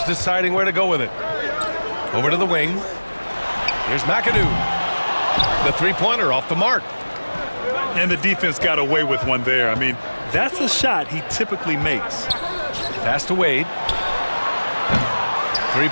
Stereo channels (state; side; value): inverted; both; correlation -1.00